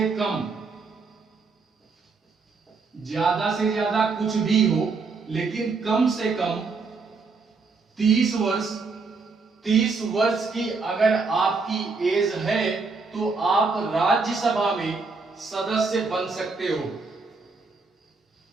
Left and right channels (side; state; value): left; quieter; 4.4 dB